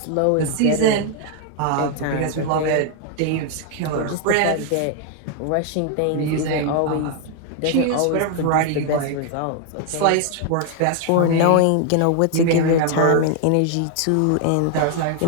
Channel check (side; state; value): both; different; correlation 0.00